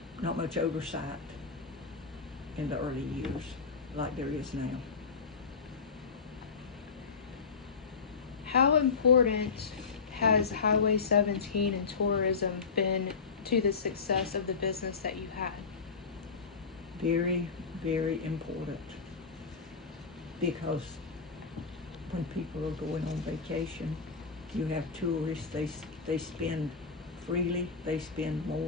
oversight in the early years like there is now. How important has Highway 17 and tourism been to the success of the business that you had? Very, very important, because when people are going on vacation, you have tourists, they spend freely, they spend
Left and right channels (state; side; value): quieter; right; 5.2 dB